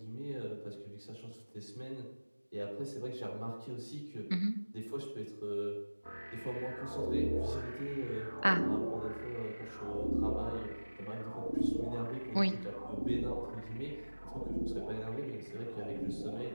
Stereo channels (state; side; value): inverted; both; correlation -1.00